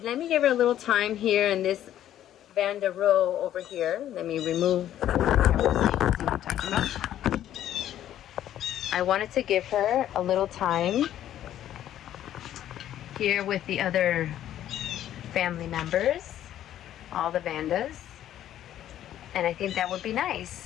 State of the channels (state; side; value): quieter; right; 11.7 dB